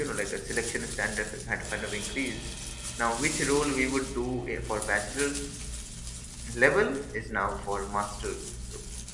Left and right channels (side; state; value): both; identical; correlation 1.00